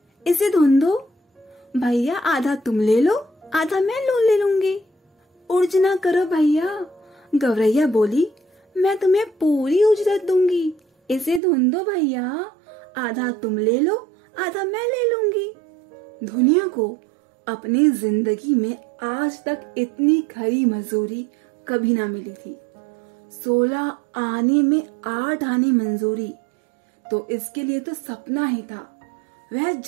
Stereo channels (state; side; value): drops out; left; at 11.4 s